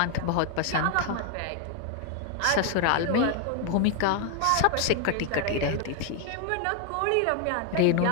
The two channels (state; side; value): different; both; correlation 0.01